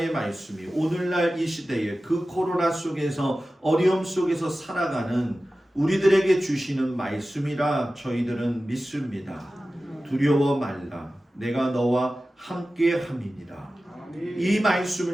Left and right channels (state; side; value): normal; both; correlation 0.95